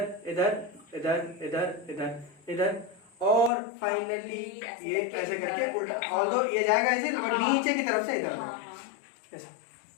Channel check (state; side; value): drops out; right; at 3.5 s